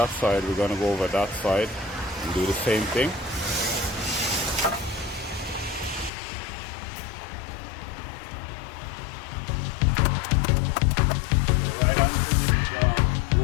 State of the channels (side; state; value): right; drops out; at 6.1 s